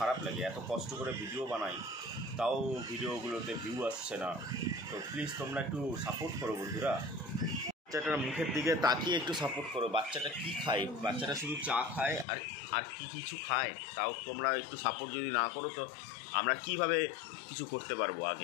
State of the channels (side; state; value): right; drops out; at 12.2 s